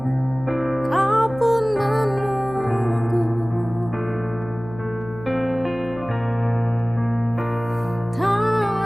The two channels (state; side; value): noise; left; hum, 15 dB below the sound